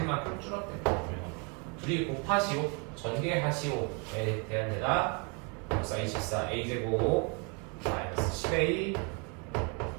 줄었대. 둘이 곱하시오, 전개하시오에 대한 데다 6, 24 a제곱 마이너스 10a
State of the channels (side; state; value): left; quieter; 34.3 dB